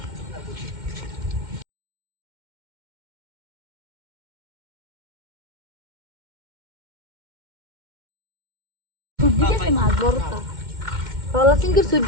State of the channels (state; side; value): late; left; 2.1 ms